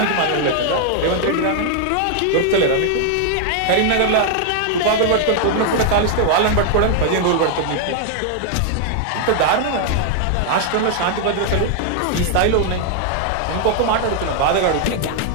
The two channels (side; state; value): both; different; correlation 0.00